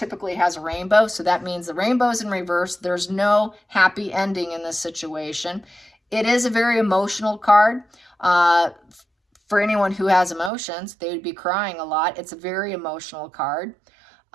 has a rainbow, so that means the rainbow's in reverse. There's no happy ending in this situation. It is a very emotional card. For anyone who has emotions, they would be crying a lot. It's a very emotional card.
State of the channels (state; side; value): drops out; left; at 10.5 s